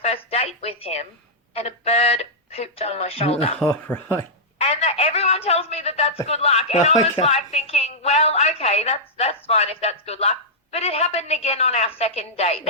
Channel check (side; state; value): both; normal; correlation -0.10